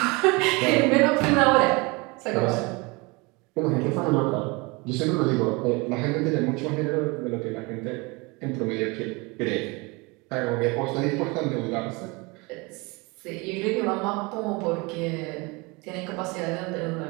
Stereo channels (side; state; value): left; quieter; 26.6 dB